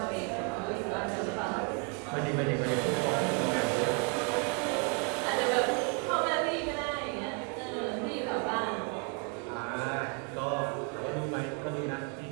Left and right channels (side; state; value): left; quieter; 34.7 dB